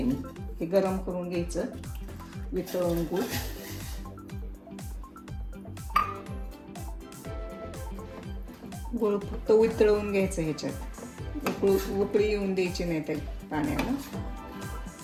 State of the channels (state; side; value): identical; both; correlation 1.00